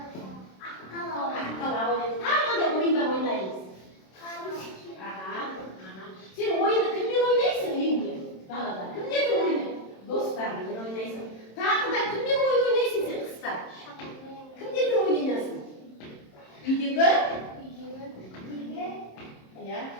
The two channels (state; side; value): late; right; 27 ms